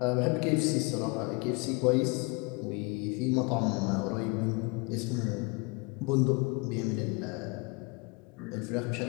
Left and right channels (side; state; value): right; quieter; 29.4 dB